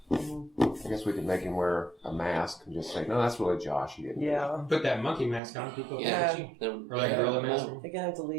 Mhm. I guess we could make him wear a mask and just say, "No, that's really Josh." He didn't. Yeah. Put that monkey mask on. People Yeah. catch you. Then- Or like a gorilla mask. You're gonna have to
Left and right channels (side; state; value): left; drops out; at 5.4 s